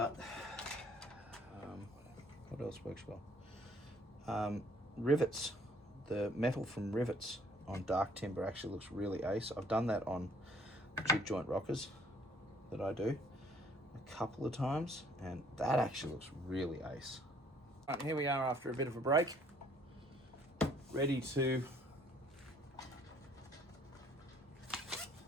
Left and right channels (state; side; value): normal; both; correlation 0.61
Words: what else works well? Rivets, the metal from rivets on dark timber actually looks really ace. I've done that on jig joint rockers that I do a couple of times, and that actually looks really ace. Right, here we are after a bit of a break, ready to